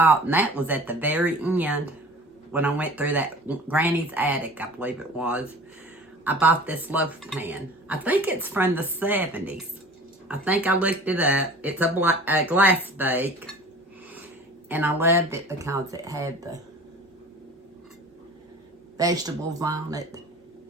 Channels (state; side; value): normal; both; correlation 0.43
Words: and that was at the very end, when I went through that Granny's attic, I believe it was, I bought this loaf pan. I think it's from the 70s. I think I looked it up. It's a glass bake, and I loved it because it had the vegetables on it.